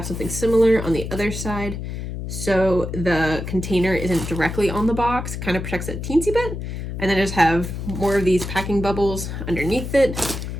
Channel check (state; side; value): noise; left; hum, 6 dB below the sound